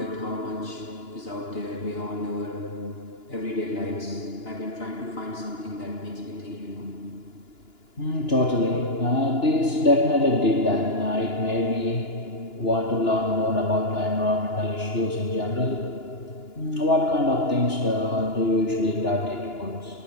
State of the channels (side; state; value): right; late; 2.9 ms